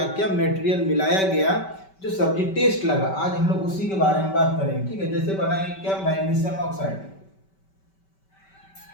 क्या मटेरियल मिलाया गया जो सब्जी टेस्ट लगा। आज हम लोग उसी के बारे में बात करेंगे। ठीक है, जैसे बनाएंगे क्या, मैग्नीशियम ऑक्साइड।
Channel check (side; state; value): right; late; 5.2 ms